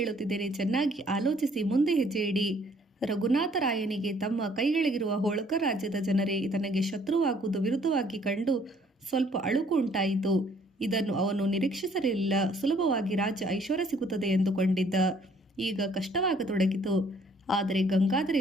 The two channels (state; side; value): normal; both; correlation 0.61